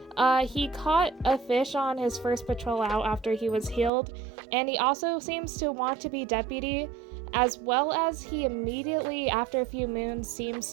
He caught a fish on his first patrol out after he was healed, and he also seems to want to be deputy, as well as he immediately, after a few moons, seems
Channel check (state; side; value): drops out; left; at 3.9 s